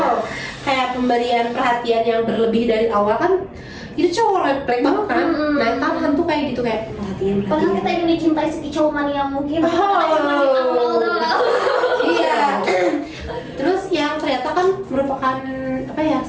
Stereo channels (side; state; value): both; identical; correlation 1.00